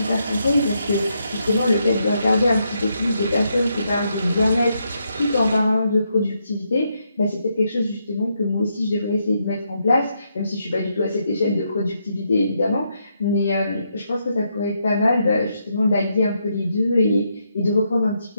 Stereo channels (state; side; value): inverted; both; correlation -0.79